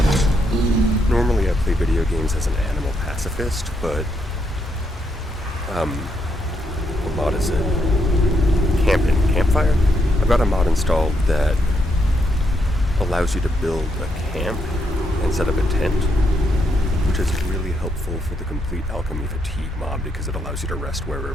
Normally I play video games as an animal pacifist, but what mod is it? Campfire? I've got a mod installed that allows you to build a camp and set up a tent. which is really helpful for the complete alchemy fatigue mob because it allows you to rest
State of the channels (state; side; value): normal; both; correlation 0.78